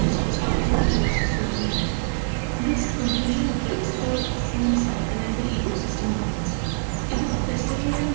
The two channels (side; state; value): left; silent; digital silence